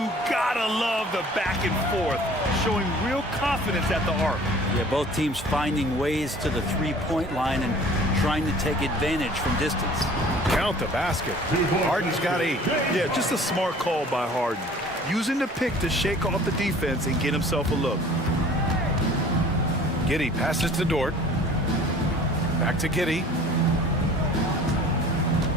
gotta love the back and forth, showing real confidence at the arc. Yeah, both teams finding ways to the three-point line and trying to take advantage from distance. Count the basket. Harden's got 8. Yeah, just a smart call by Harden. Using the pick to shake off the defense and get himself a look. Giddey passes to Dort. Back to Giddey.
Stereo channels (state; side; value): normal; both; correlation 0.49